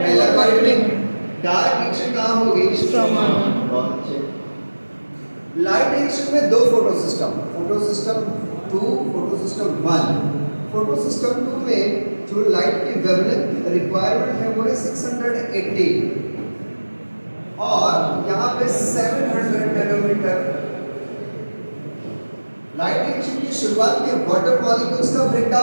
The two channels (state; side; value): inverted; both; correlation -1.00